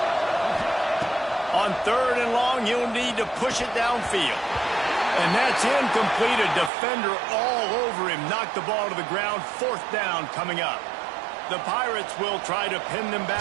On 3rd and long, you'll need to push it downfield. And that's incomplete. A defender all over him. Knocked the ball to the ground. 4th down coming up. The Pirates will try to pin them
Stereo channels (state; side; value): drops out; left; at 6.7 s